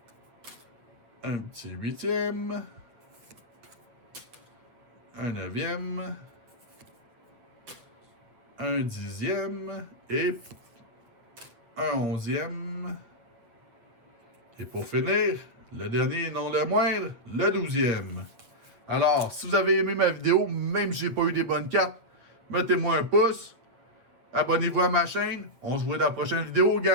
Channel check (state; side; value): late; left; 8.2 ms